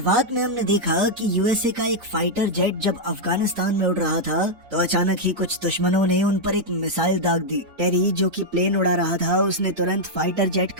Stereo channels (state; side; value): late; left; 4.1 ms